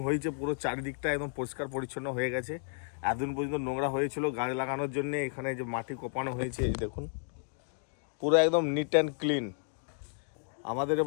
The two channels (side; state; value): right; silent; digital silence